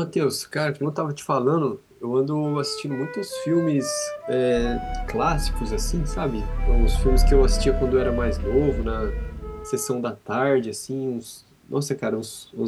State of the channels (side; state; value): both; identical; correlation 1.00